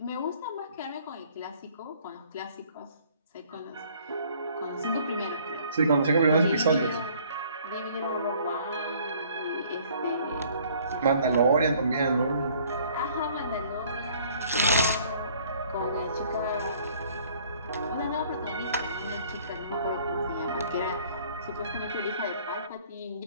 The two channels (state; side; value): inverted; both; correlation -0.57